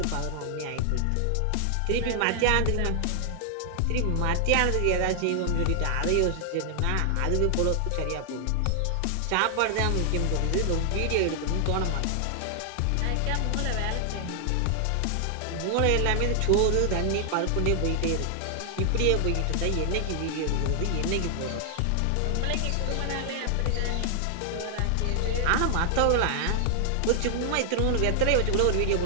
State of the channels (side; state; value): both; different; correlation 0.00